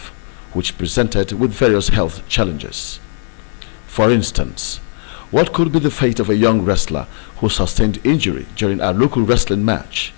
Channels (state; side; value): silent; right; 61 dB below the other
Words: which presented with various health challenges. For instance, what could be the fate of a young wrestler who sustained injury during a local wrestling match,